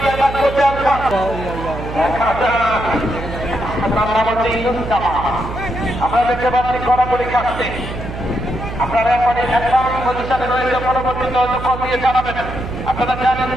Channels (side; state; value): right; noise; hum, 8 dB below the sound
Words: আমরা দেখতে পাচ্ছি কড়াকড়ি খাচ্ছে। আপনারা এরপরে পজিশনে রয়েছে, পরবর্তীতে কল দিয়ে জানাবেন। আপনারা জানেন